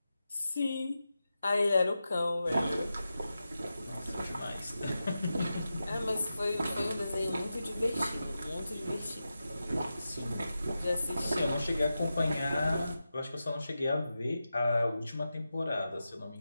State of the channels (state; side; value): inverted; both; correlation -0.91